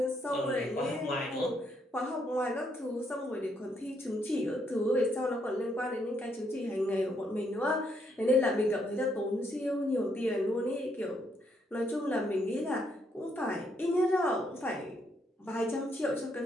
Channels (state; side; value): normal; both; correlation 0.74